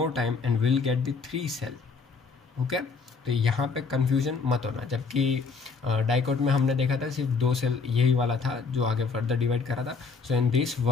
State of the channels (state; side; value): quieter; right; 4.8 dB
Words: time and will get the 3 cell. Okay, तो यहाँ पे कन्फ्यूजन मत होना. जबकि डाइकॉट में हमने देखा था सिर्फ 2 सेल यही वाला था जो आगे फर्दर डिवाइड करा था. So in this